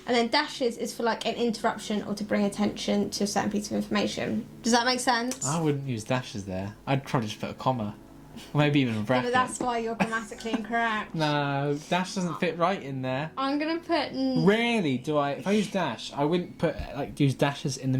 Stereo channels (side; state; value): both; identical; correlation 1.00